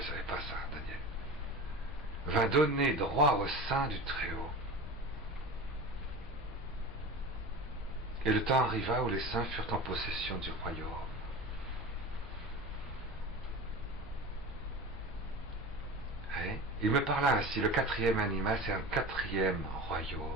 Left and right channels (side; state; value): both; normal; correlation 0.32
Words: savait pas ça, Daniel, vint donner droit aux saints du Très-Haut. Et le temps arriva où les saints furent en possession du royaume. Il me parla ainsi, le 4e animal, c'est un 4e